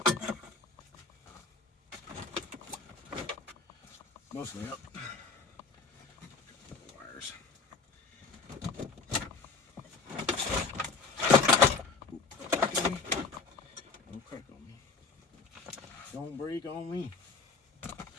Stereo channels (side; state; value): right; quieter; 4.5 dB